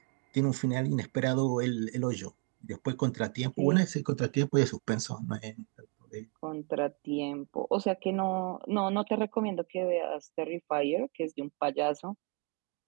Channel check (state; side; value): quieter; left; 33.7 dB